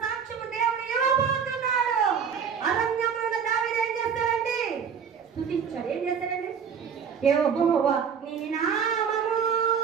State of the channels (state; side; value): quieter; left; 6.9 dB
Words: సాక్ష్యము దేవుడు ఇవ్వబోతున్నాడు. అరణ్యంలో దావీదు ఏం చేస్తాడండి? స్తుతించాడు. ఏం చేస్తాడండి? యెహోవా నీ నామము.